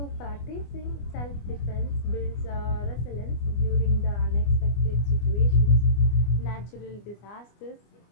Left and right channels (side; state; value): right; late; 25 ms